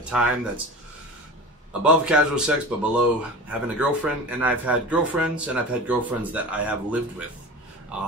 time that's above casual sex but below having a girlfriend. And I've had girlfriends, and I've had girlfriends that I have lived with,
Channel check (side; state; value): both; normal; correlation 0.34